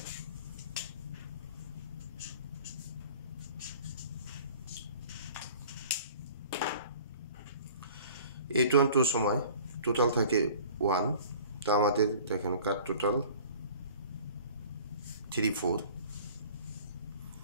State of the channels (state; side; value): inverted; both; correlation -0.47